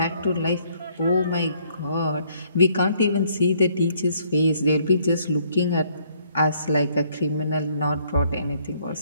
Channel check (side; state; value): both; inverted; correlation -0.66